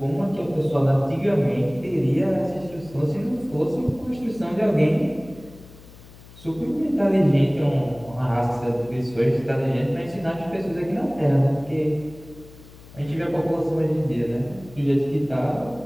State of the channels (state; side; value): noise; left; hum, 21 dB below the sound